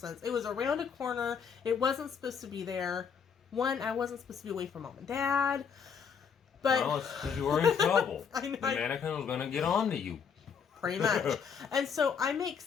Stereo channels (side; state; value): right; quieter; 6.7 dB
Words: It was around a corner. It wasn't supposed to be there. I wasn't supposed to be away from mom and dad. But well, it's because you were in trouble. I know. The mannequin was going to get on to you. Pretty much. And so I make